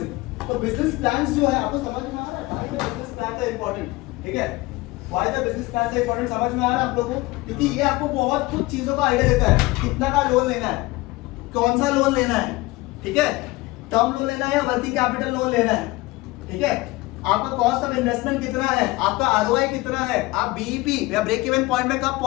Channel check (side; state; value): right; quieter; 20.9 dB